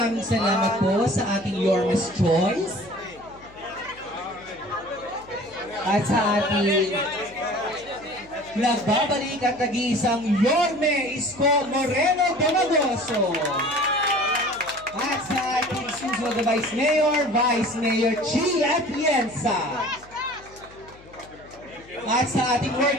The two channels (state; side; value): noise; left; hum, 24 dB below the sound